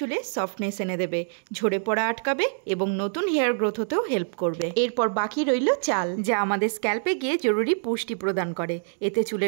সফটনেস এনে দেবে, ঝরে পড়া আটকাবে এবং নতুন হেয়ার গ্রোথ হতেও হেল্প করবে। এরপর বাকি রইল চাল, যা আমাদের স্ক্যাল্পে গিয়ে জরুরি পুষ্টি প্রদান করে। এতে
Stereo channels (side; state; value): left; silent; digital silence